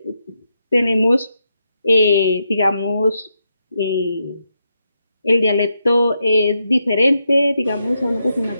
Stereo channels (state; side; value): inverted; both; correlation -0.83